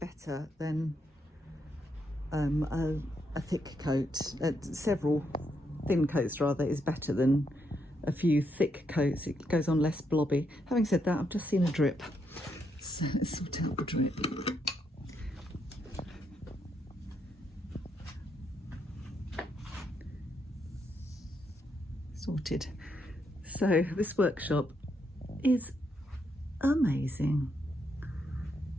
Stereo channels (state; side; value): normal; both; correlation 0.78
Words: than a thick coat. Several thin coats rather is better than a few thick coats. It goes on less blobby. Having said that, I've just seen a drip. So let's sort out the drip. Sorted. So this workshop is amazing.